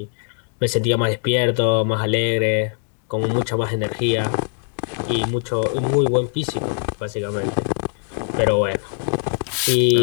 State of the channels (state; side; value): silent; right; digital silence